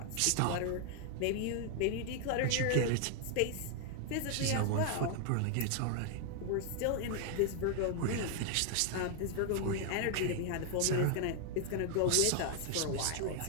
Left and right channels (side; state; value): both; different; correlation 0.00